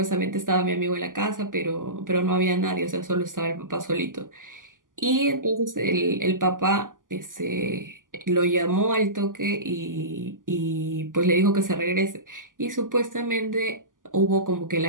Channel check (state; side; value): late; left; 0.88 ms